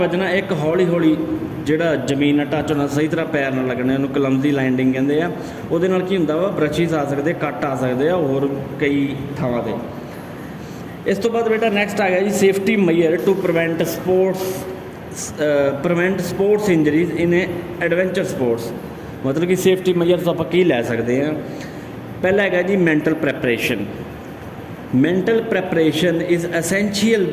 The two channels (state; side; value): identical; both; correlation 1.00